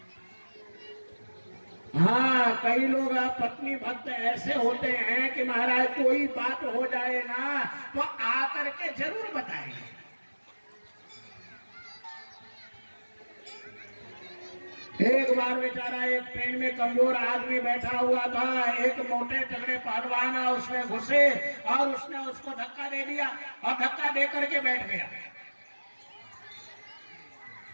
हाँ, कई लोग पत्नी भक्त ऐसे होते हैं कि महाराज कोई बात हो जाए ना तो आकर के जरूर बताएंगे। एक बार बेचारा एक ट्रेन में कमजोर आदमी बैठा हुआ था, एक मोटे तगड़े पहलवान उसमें घुसे और उसने उसको धक्का दे दिया और धक्का दे करके बैठ गया।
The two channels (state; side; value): inverted; both; correlation -1.00